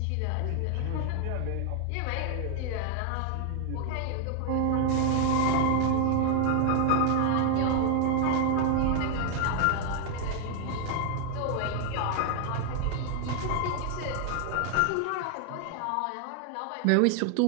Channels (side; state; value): both; different; correlation 0.00